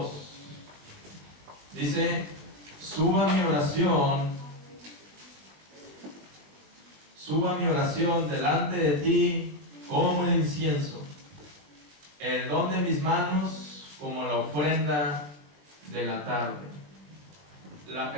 Dice, suba mi oración delante de ti como el incienso, el don de mis manos como la ofrenda de la tarde. La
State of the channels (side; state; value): left; late; 20 ms